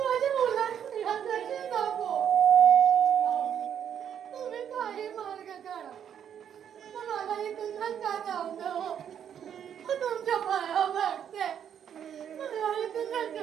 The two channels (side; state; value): left; quieter; 8.9 dB